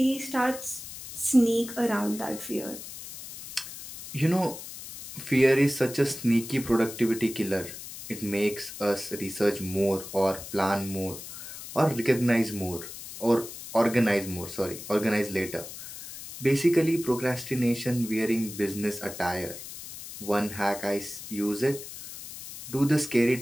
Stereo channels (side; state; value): left; noise; hiss, 12 dB below the sound